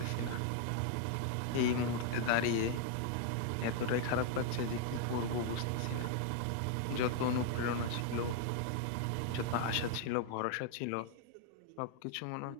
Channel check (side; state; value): both; different; correlation 0.00